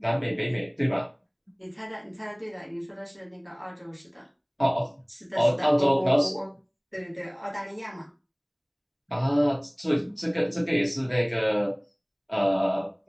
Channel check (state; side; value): identical; both; correlation 1.00